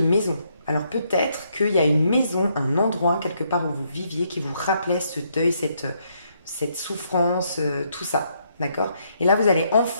Alors peut-être qu'il y a une maison, un endroit quelque part où vous viviez qui vous rappelait ce deuil, cette souffrance, tout ça. D'accord? Et là, vous allez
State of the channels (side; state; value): both; inverted; correlation -0.73